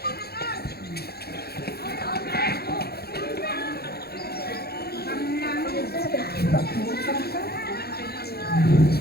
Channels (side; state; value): right; late; 0.46 ms